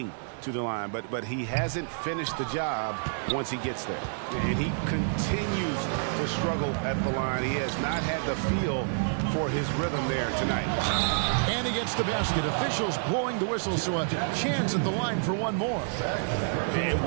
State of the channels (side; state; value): left; silent; digital silence